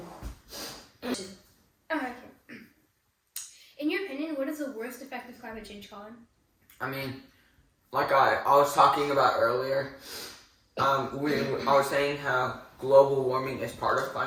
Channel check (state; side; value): identical; both; correlation 1.00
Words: Okay. In your opinion, what is the worst effect of climate change, Colin? I mean, like I was talking about earlier, I was saying how global warming is part of